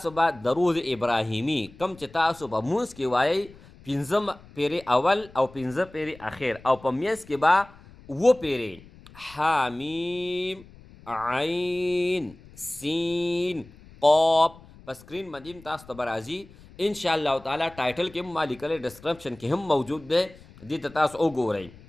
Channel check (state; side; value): noise; left; rumble, 22 dB below the sound